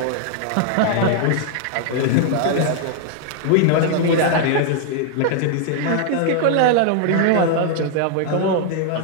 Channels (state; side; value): different; both; correlation 0.00